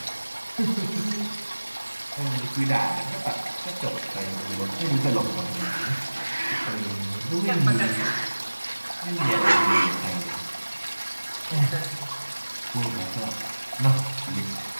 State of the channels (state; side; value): inverted; both; correlation -1.00